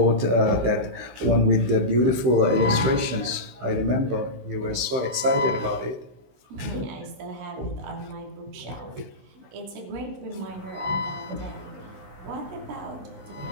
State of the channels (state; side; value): late; left; 16 ms